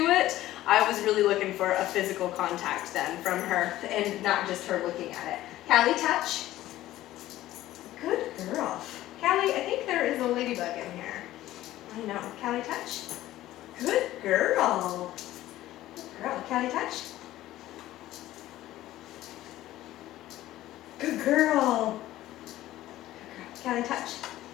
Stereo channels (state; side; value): quieter; right; 14.9 dB